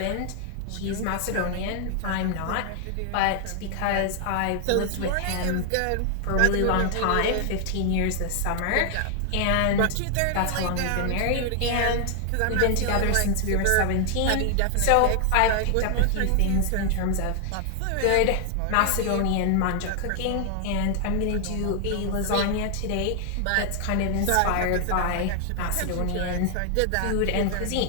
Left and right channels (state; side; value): different; both; correlation 0.00